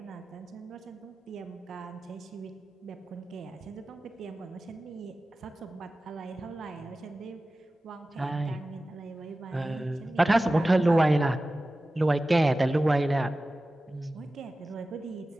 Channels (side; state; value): both; normal; correlation 0.95